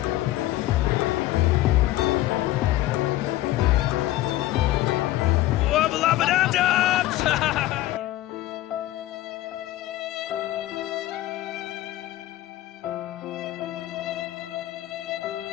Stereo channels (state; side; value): quieter; right; 15.8 dB